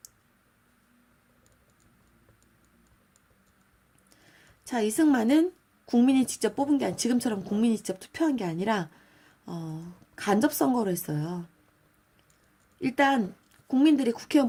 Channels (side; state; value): both; identical; correlation 1.00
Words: 자, 이승만은 국민이 직접 뽑은 게 아니라 지금처럼 국민이 직접 투표한 게 아니라 간접 선거로 했어요. 일단 국민들이